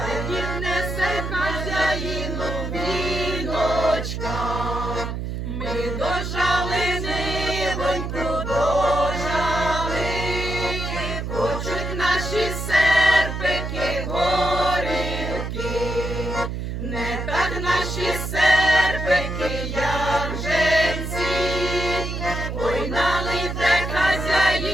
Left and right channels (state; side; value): noise; right; hum, 4 dB below the sound